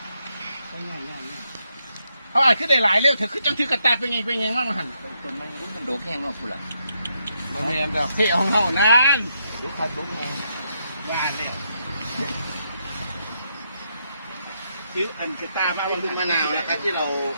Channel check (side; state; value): both; inverted; correlation -0.79